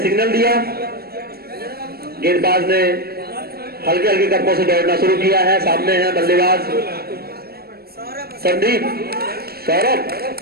सिग्नल दिया। गेंदबाज ने हल्के हल्के कदमों से दौड़ना शुरू किया है। सामने है बल्लेबाज संदीप, सौरभ,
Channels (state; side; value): late; left; 0.45 ms